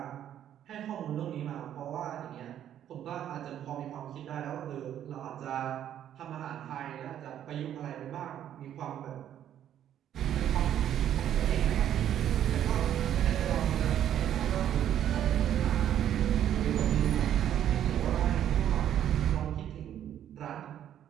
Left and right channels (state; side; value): quieter; left; 10.6 dB